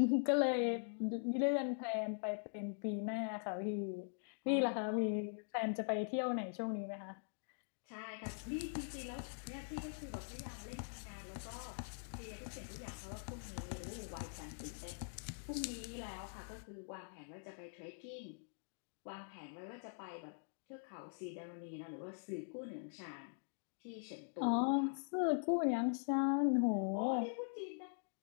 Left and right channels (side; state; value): right; silent; digital silence